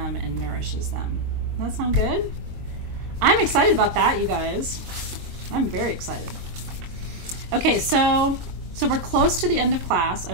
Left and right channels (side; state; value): left; late; 23 ms